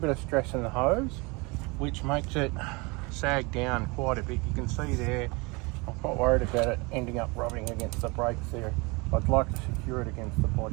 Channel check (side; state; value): left; quieter; 27.1 dB